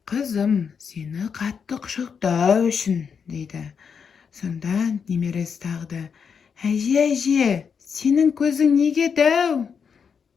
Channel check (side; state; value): right; quieter; 6.5 dB